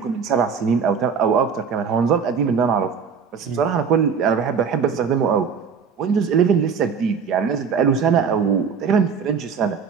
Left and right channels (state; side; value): quieter; left; 6.2 dB